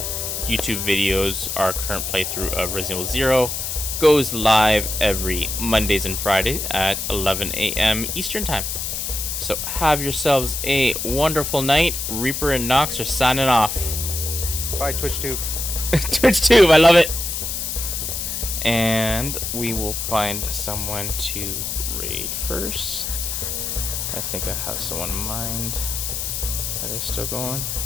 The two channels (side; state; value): left; noise; hiss, 3 dB below the sound